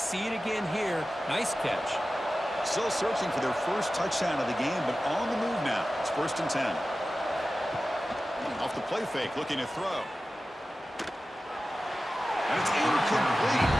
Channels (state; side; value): normal; both; correlation 0.95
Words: it again here. Nice catch. Still searching for their first touchdown of the game, but on the move now. It's 1st and 10. Off the play fake, looking to throw. And it's incomplete.